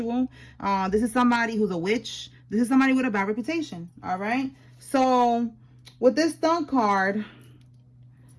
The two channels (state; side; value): identical; both; correlation 1.00